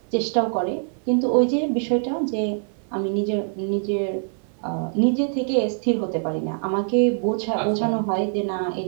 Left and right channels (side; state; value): left; silent; 56 dB below the other